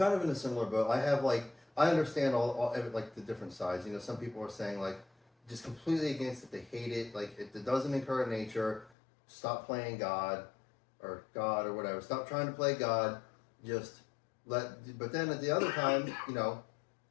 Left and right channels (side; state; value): right; drops out; at 8.9 s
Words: of in a similar boat. I understand all like the different sides. You know, some people are saying like just completely against it. They hate it. Like it doesn't encourage nature. Stop playing God or whatever. Stop trying to play God. But then at the other time, you know,